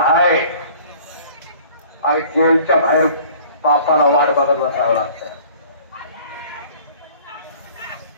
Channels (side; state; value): both; inverted; correlation -0.50